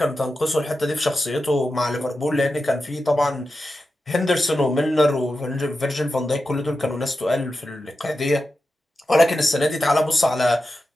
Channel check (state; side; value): normal; both; correlation 0.91